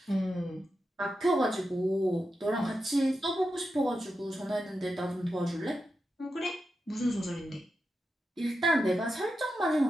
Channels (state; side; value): normal; both; correlation 0.89